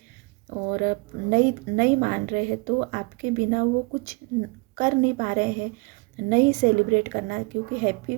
और नहीं नहीं मान रहे हैं, तो आपके बिना वो कुछ कर नहीं पा रहे हैं, नहीं सेलिब्रेट करना, क्योंकि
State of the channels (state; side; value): quieter; left; 26.6 dB